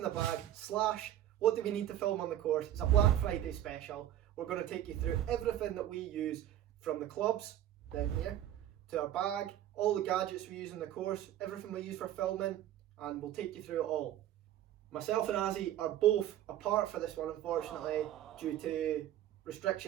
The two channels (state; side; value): quieter; left; 12.0 dB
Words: the bag / what do we need to film on the course. It's a Black Friday special. We're going to take you through everything that we use, from the clubs down here to our bag, all the gadgets we use in the course, everything we use for filming, and we'll take you through it all. Myself and Azzie are both apart for this one, unfortunately, due to